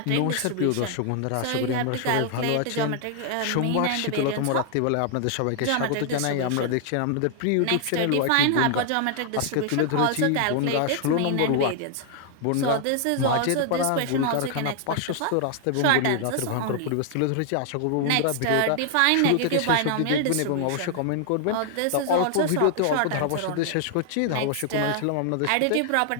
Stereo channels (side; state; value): both; different; correlation 0.00